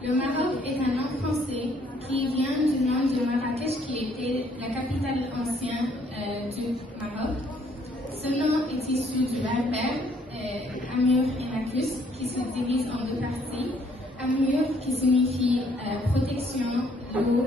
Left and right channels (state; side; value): normal; both; correlation 0.65